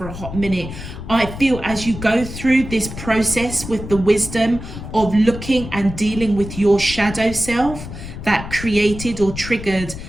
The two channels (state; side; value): noise; left; rumble, 10 dB below the sound